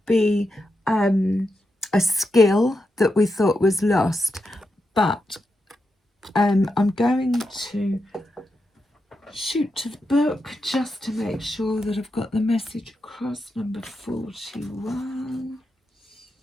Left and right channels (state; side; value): normal; both; correlation 0.86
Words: be a skill that we thought was lost. But I'm going to shoot to the book just to make sure that I've got the message across. Number 41,